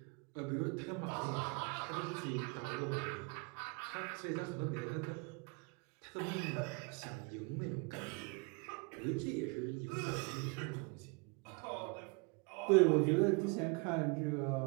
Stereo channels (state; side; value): quieter; left; 31.2 dB